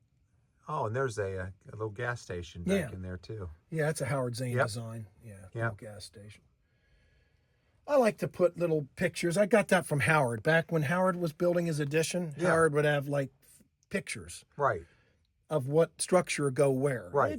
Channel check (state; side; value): identical; both; correlation 1.00